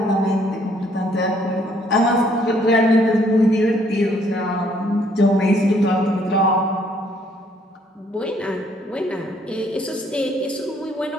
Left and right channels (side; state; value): both; normal; correlation 0.66